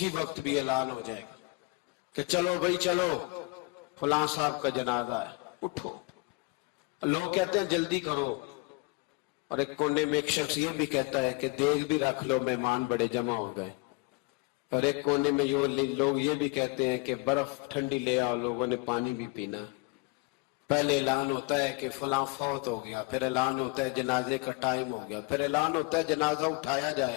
وقت بھی اعلان ہو جائے گا کہ چلو بھائی چلو فلاں صاحب کا جنازہ ہے، اٹھو. لوگ کہتے ہیں جلدی کرو، اور ایک کونے میں ایک شخص یہ بھی کہتا ہے کہ دیگ بھی رکھ لو، مہمان بڑے جمع ہو گئے. اور ایک کونے میں لوگ یہ بھی کہتے ہیں کہ برف ٹھنڈی لے آؤ، لوگوں نے پانی بھی پینا. پہلے اعلان ہوتا ہے کہ فلاں فوت ہو گیا، پھر اعلان ہوتا ہے جنازے کا ٹائم ہو گیا، پھر اعلان ہوتا ہے جنازہ اٹھایا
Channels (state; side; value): quieter; right; 27.4 dB